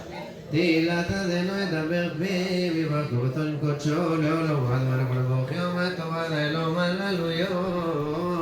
תהילת אדונו ידבר פיו יברכו אותו עם קודשו לעולם ועד מלך ולברך יום הטובה לאלוהים הללויות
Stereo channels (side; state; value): both; identical; correlation 1.00